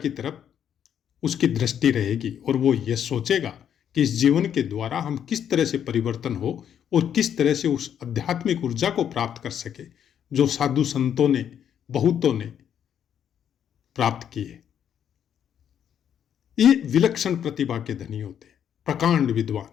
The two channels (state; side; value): quieter; right; 9.1 dB